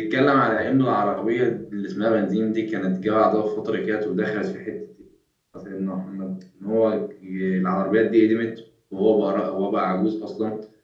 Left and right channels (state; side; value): identical; both; correlation 1.00